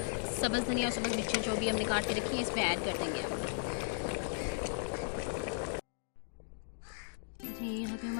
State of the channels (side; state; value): right; silent; digital silence